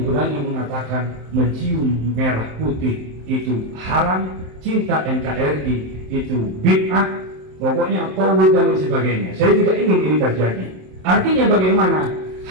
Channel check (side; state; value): left; late; 27 ms